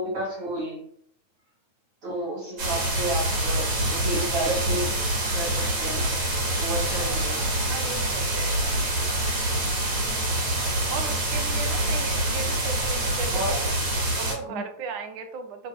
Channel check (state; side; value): late; left; 9.4 ms